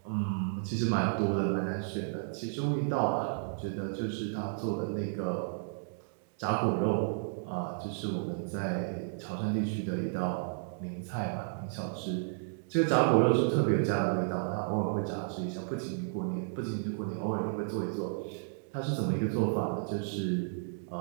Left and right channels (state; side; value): silent; left; digital silence